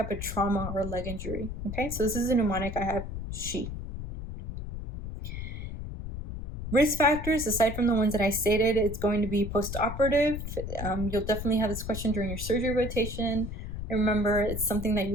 of trauma or leg injury? Okay, so this is a mnemonic I have, she. Risk factors, aside from the ones that I stated, it's going to be post-operative. You'll definitely have this question during your surgery rotation. Remember, it's something that you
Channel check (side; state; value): left; noise; rumble, 7 dB below the sound